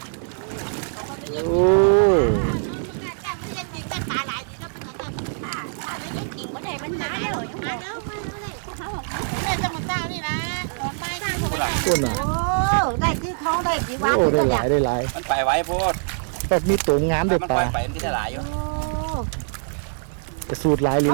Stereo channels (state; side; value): silent; left; digital silence